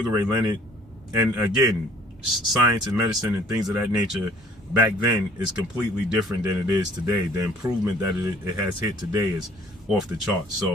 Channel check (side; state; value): both; normal; correlation 0.55